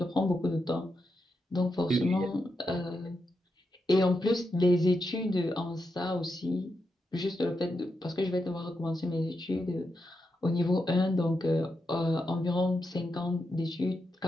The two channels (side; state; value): both; normal; correlation 0.86